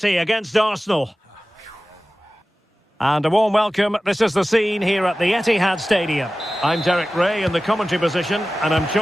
against Arsenal. And a warm welcome. This is the scene here at the Etihad Stadium. I'm Derek Ray in the commentary position, and I'm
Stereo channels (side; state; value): both; normal; correlation 0.96